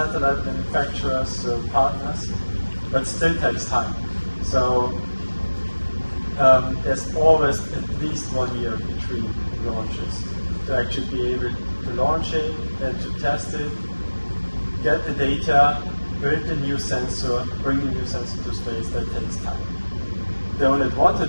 manufacturers, partners, but still takes time. So there's always at least 1 year between launches to actually be able to launch it and to test it, get the data, build the new sensor, bring the new sensor to space. That takes time. The only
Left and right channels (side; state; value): both; inverted; correlation -1.00